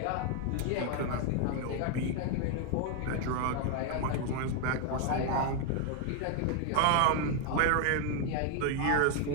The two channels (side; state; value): both; different; correlation 0.00